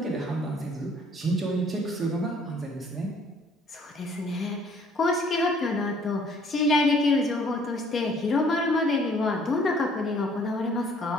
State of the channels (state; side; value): normal; both; correlation 0.59